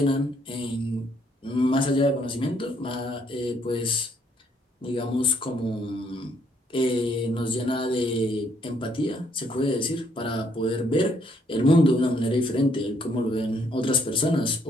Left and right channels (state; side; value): normal; both; correlation 0.69